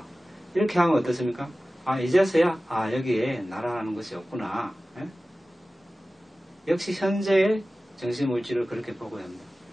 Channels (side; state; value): both; normal; correlation 0.96